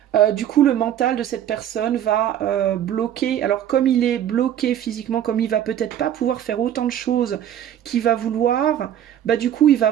Du coup, le mental de cette personne va bloquer. Alors, comme il est bloqué physiquement, comme il va peut-être pas pouvoir faire autant de choses qu'il va vouloir, bah du coup, il va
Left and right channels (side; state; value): left; quieter; 10.6 dB